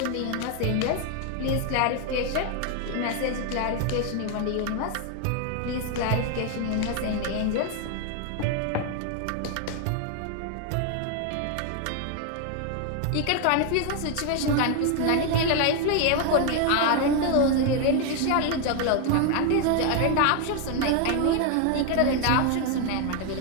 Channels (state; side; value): different; both; correlation 0.01